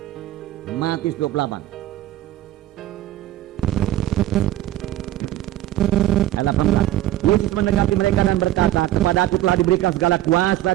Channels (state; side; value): quieter; left; 14.5 dB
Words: Ayat 18. Yesus mendekati mereka dan berkata, kepadaku telah diberikan segala kuasa